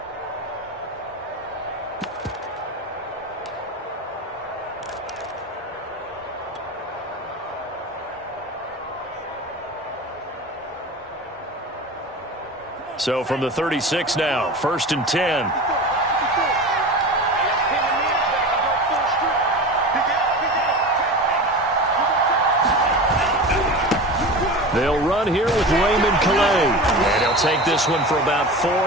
So from the 36 now, 1st and 10. They'll run here with Raymond Calais. And he'll take this one for about 4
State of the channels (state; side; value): normal; both; correlation 0.31